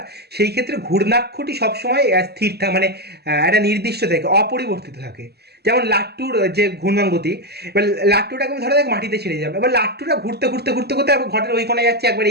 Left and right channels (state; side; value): late; left; 0.47 ms